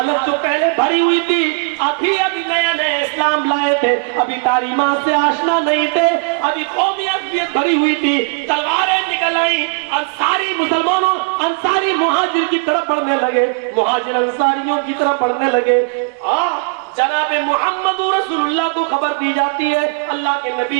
جو پہلے بھری ہوئی تھی, ابھی نئے اسلام لائے تھے, ابھی تعلیمات سے آشنا نہیں تھے, ابھی قومی عصبیت بھری ہوئی تھی. تلواریں نکل آئیں, انصاری مسلمانوں انصاری مہاجر کی طرف بڑھنے لگے, مہاجر انصاریوں کی طرف بڑھنے لگے. جناب محمد رسول اللہ کو خبر دی جاتی ہے, اللہ کے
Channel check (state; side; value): quieter; left; 34.7 dB